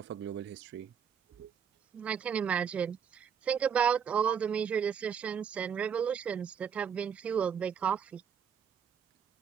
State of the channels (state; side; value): quieter; left; 7.6 dB